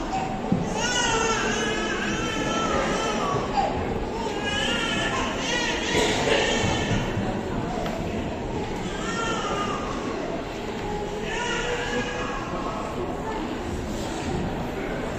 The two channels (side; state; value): both; identical; correlation 1.00